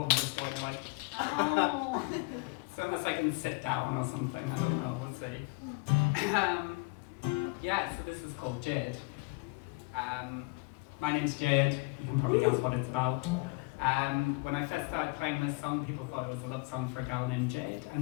just going like, oh. So unless I can sit down or something, I don't know, we'll see. Yeah, so this is called Jade. My name's Jade, you can probably guess what it's about. When I first started playing this song, people thought it was a love song for a gal named Jade,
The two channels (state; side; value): quieter; right; 28.1 dB